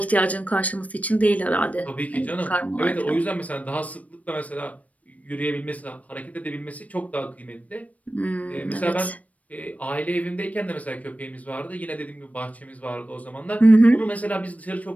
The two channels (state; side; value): late; right; 0.069 ms